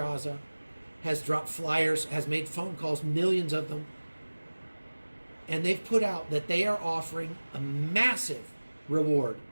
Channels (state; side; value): inverted; both; correlation -1.00